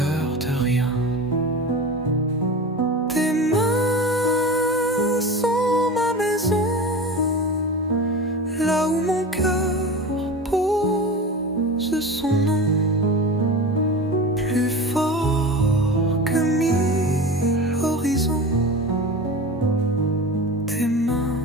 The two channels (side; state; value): both; normal; correlation 0.31